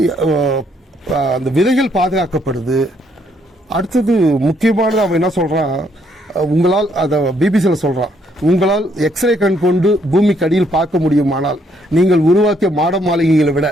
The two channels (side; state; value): both; normal; correlation 0.70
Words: அந்த விதைகள் பாதுகாக்கப்படுது. அடுத்தது முக்கியமானது, அவன் என்ன சொல்றான், உங்களால் அதை பிபிசியில் சொல்றான், உங்களால் எக்ஸ்ரே கண் கொண்டு பூமிக்கு அடியில் பார்க்க முடியுமானால் நீங்கள் உருவாக்கிய மாட மாளிகைகளை விட